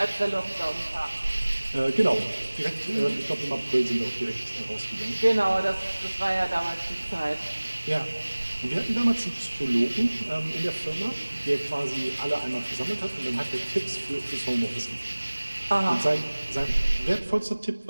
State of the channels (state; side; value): inverted; both; correlation -1.00